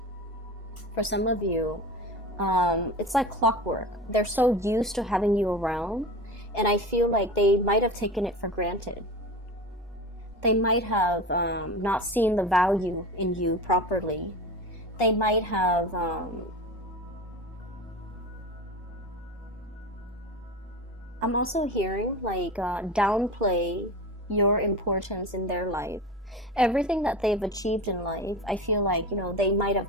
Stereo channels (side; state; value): both; normal; correlation 0.30